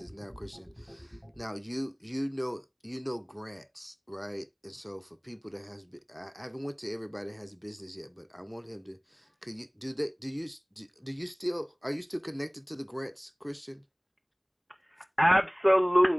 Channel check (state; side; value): identical; both; correlation 1.00